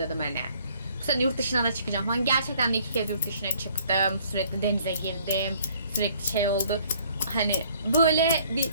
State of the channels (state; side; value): inverted; both; correlation -0.60